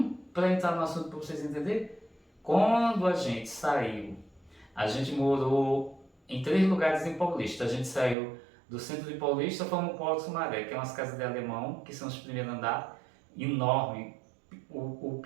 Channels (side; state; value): left; drops out; at 8.2 s